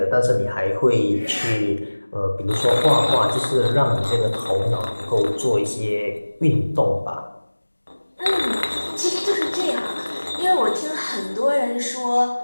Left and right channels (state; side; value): inverted; both; correlation -1.00